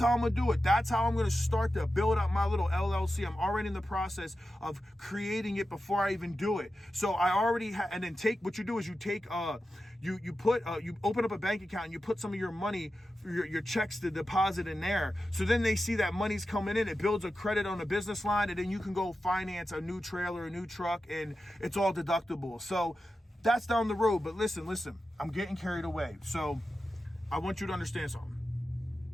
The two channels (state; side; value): normal; both; correlation 0.92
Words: how I'm going to do it. That's how I'm going to start to build up my little LLC. I'm already in the process of creating it before I even do it. So I already and then what you do is you open up a bank account and you put some of your money, your checks to deposit in there. So then they see that money's coming in. It builds a credit on the business line, and then you can go finance a new trailer, a new truck, and it's all deductible. So that's down the road. But listen, I'm getting carried away. So I want you to understand something.